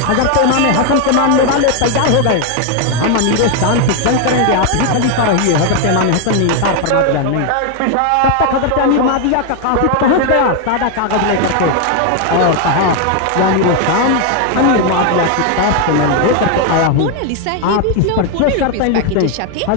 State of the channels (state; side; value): different; both; correlation 0.01